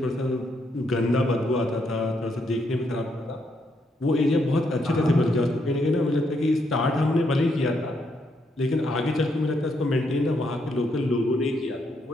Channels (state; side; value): normal; both; correlation 0.76